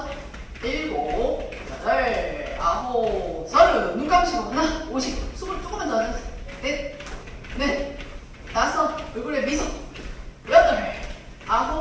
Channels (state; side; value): identical; both; correlation 1.00